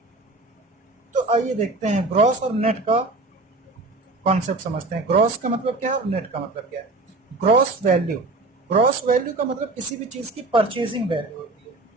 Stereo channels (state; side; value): quieter; left; 3.2 dB